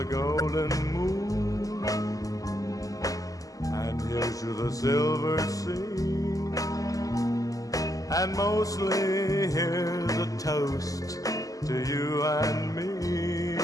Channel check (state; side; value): late; right; 0.17 ms